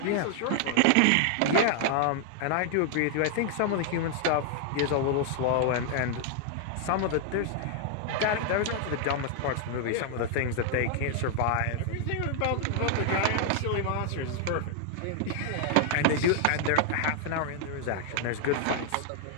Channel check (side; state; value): both; different; correlation 0.00